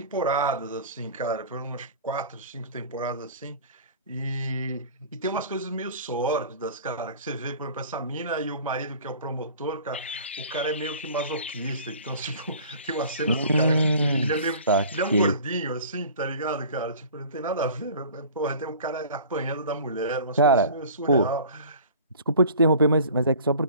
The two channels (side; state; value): both; inverted; correlation -0.44